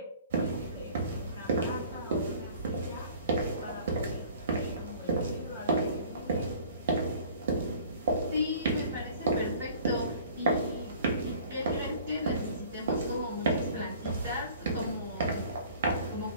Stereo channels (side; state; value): both; inverted; correlation -0.49